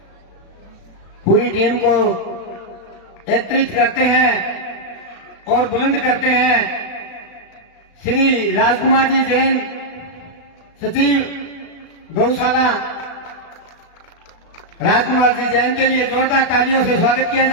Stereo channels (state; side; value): late; right; 36 ms